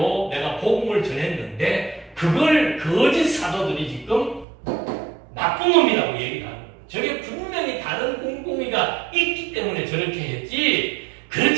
내가 복음을 전했는데 그걸 거짓 사도들이 지금 나쁜 놈이라고 얘기를 하는 거예요. 저게 분명히 다른 꿍꿍이가 있기 때문에 저렇게 했지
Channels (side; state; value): left; drops out; at 4.5 s